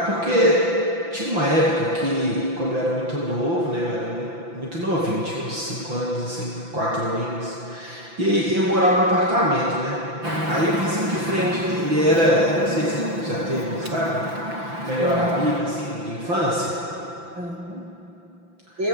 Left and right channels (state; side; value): late; left; 5.9 ms